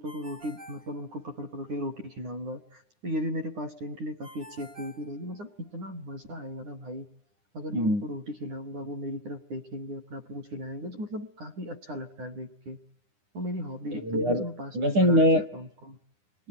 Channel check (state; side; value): late; left; 9.8 ms